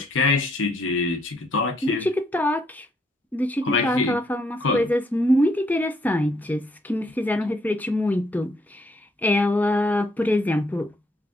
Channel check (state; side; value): normal; both; correlation 0.71